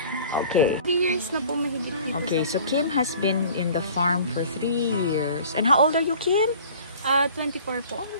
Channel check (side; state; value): both; inverted; correlation -0.48